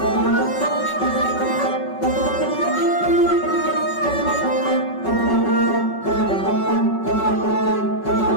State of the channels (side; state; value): right; late; 5.4 ms